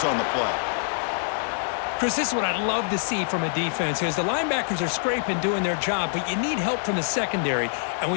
on the play. Chris, this is what I'd love to see from a defense is the linebackers are scraping, doing their job, but you need help from the secondary. And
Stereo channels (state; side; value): silent; right; 62 dB below the other